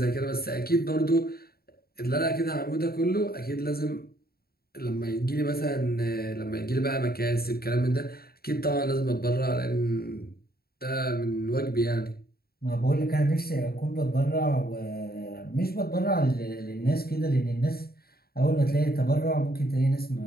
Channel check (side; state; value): right; late; 0.45 ms